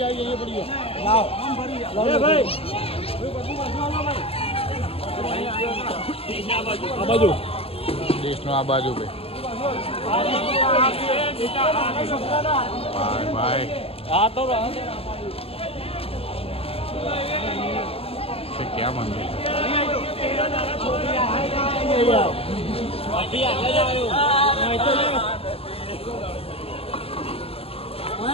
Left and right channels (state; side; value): late; right; 0.28 ms